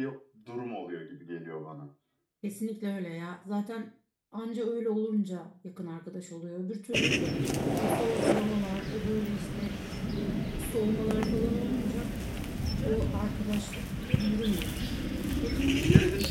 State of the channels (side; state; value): both; identical; correlation 1.00